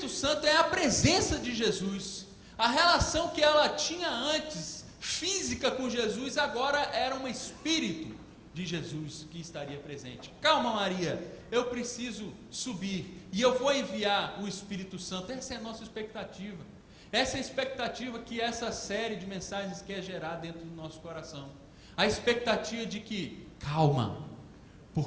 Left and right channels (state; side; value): identical; both; correlation 1.00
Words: Santo é a presença de Jesus. A relação que ela tinha antes, física com Jesus, agora era um Espírito de Jesus que estaria presente. Calma, Maria, eu preciso subir, e eu vou enviar o Espírito Santo. Essa é a nossa expectativa. Essa é a expectativa que essa série de mensagens quer gerar dentro do nosso coração. A expectativa de que, calma,